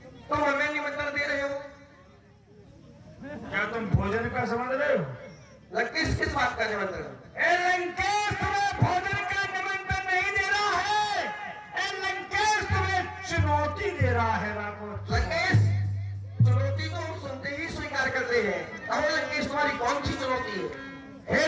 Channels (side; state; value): both; identical; correlation 1.00